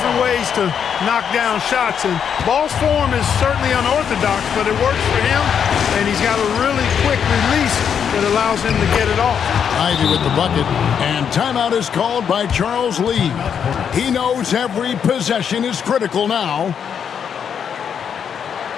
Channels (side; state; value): right; quieter; 7.7 dB